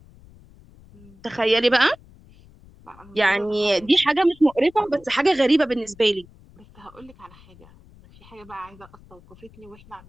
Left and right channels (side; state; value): left; noise; rumble, 24 dB below the sound